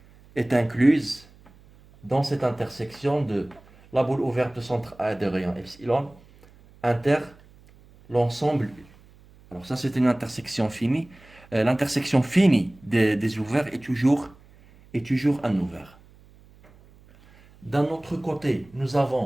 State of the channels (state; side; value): noise; right; hum, 26 dB below the sound